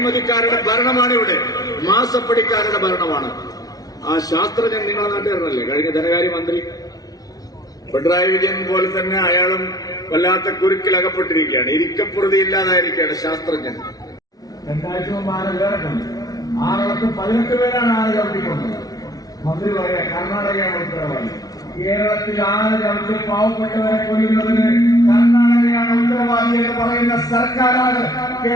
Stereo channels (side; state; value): right; late; 0.18 ms